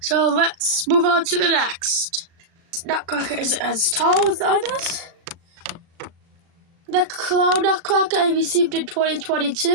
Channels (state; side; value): late; left; 37 ms